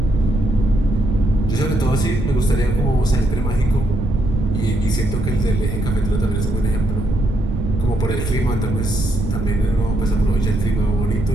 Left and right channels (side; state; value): right; noise; rumble, 3 dB below the sound